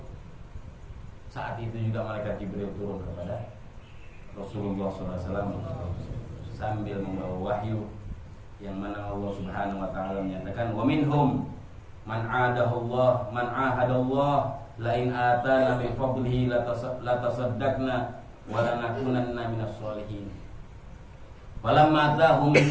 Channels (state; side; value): identical; both; correlation 1.00